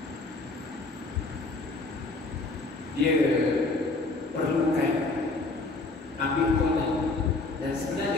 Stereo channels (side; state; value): right; quieter; 3.4 dB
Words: dia perlukan ambil corner. Dan